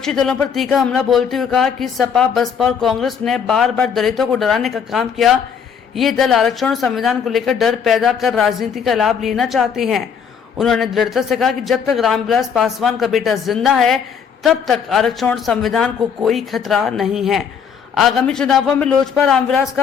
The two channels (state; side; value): quieter; right; 7.0 dB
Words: दलों पर तीखा हमला बोलते हुए कहा कि सपा, बसपा और कांग्रेस ने बार बार दलितों को डराने का काम किया। ये दल आरक्षण और संविधान को लेकर डर पैदा कर राजनीति का लाभ लेना चाहते हैं। उन्होंने दृढ़ता से कहा कि जब तक रामविलास पासवान का बेटा जिंदा है, तब तक आरक्षण और संविधान को कोई खतरा नहीं है। आगामी चुनावों में लोजपा रामविलास